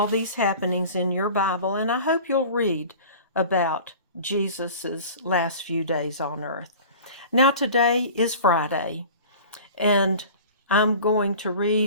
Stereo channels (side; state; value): both; inverted; correlation -0.40